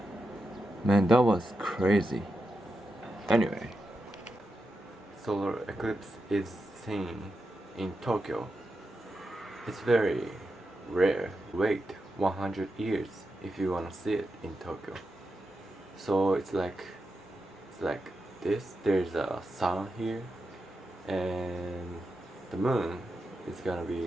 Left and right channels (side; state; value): both; normal; correlation 0.88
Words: Man, that was crazy. Anyway, solar eclipse is seen in Tokyo. It's very rare. Wait 100 years if you wanna see it in Tokyo. So it's like this. There's a sun here, and the moon is gonna